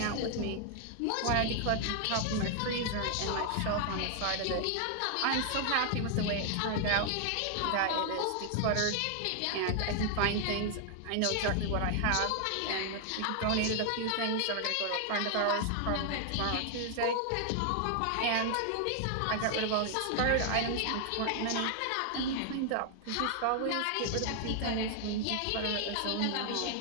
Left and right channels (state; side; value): different; both; correlation 0.00